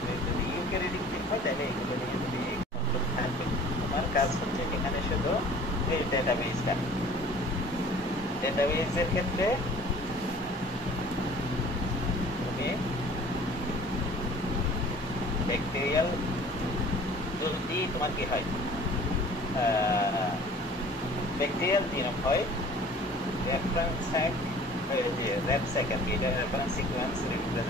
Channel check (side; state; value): both; normal; correlation 0.48